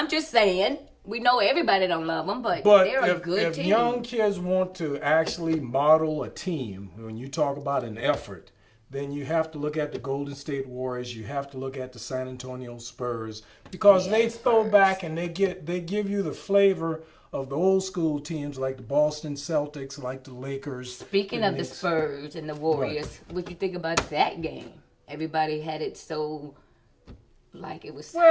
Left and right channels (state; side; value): identical; both; correlation 1.00